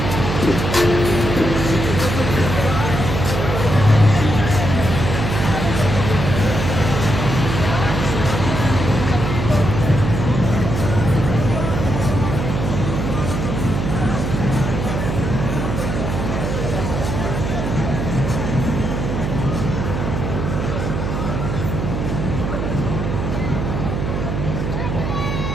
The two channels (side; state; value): right; noise; hum, 2 dB below the sound